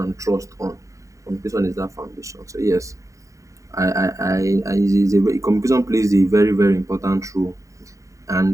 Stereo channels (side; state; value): left; late; 0.16 ms